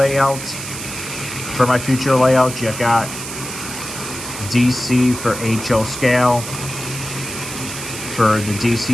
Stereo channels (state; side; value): noise; right; hiss, 8 dB below the sound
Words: you got DC for HO scale, for the